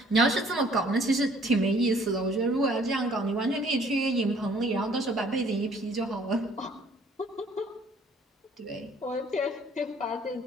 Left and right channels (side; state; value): both; normal; correlation 0.58